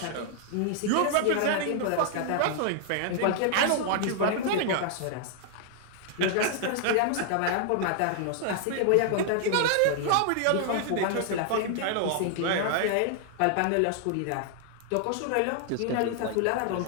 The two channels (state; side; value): different; both; correlation 0.00